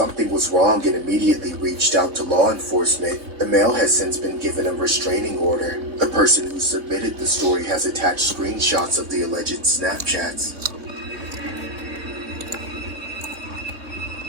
was wrong and immediately reached out to law enforcement. The male has since been given a restraining order. The person who submitted the story has attached screenshots of the alleged Snapchats.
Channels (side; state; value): left; late; 3.8 ms